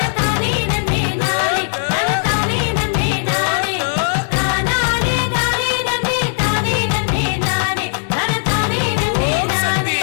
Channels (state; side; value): silent; right; digital silence